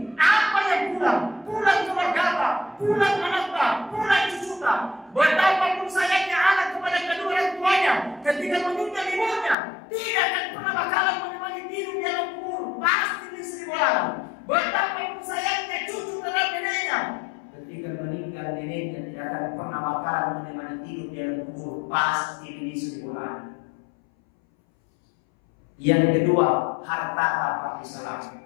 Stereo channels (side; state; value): right; drops out; at 9.6 s